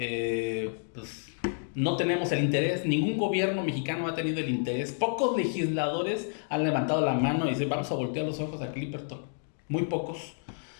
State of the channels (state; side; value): silent; right; digital silence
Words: pues, no tenemos el interés, ningún gobierno mexicano ha tenido el interés, pocos legisladores han levantado la mano y dicen vamos a voltear los ojos a Clipperton, muy pocos.